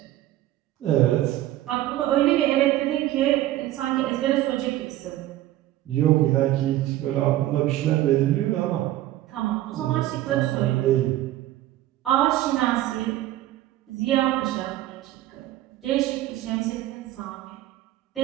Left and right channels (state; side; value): quieter; left; 14.6 dB